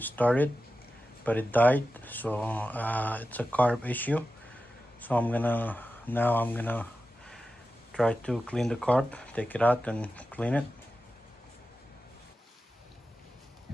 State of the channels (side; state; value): both; normal; correlation 0.93